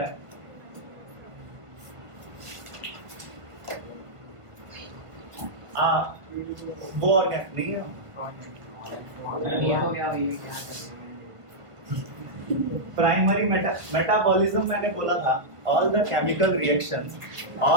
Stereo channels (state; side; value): late; left; 1.5 ms